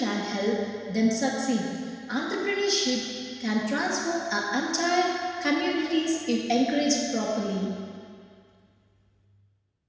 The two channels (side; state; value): both; identical; correlation 1.00